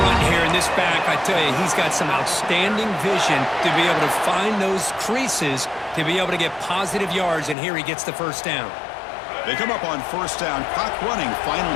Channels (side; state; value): right; drops out; at 7.6 s